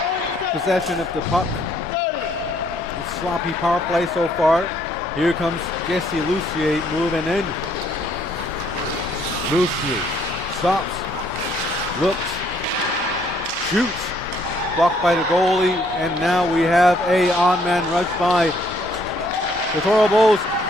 possession of the puck. A sloppy power play so far. Here comes Jesse Lucier moving in. Lucier stops, looks, shoots, blocked by the goalie, and now we have a on-man rush by the Toro Bulls.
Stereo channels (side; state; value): both; normal; correlation 0.66